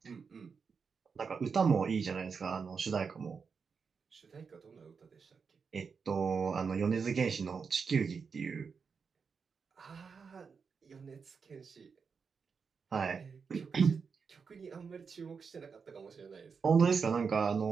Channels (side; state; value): left; quieter; 5.6 dB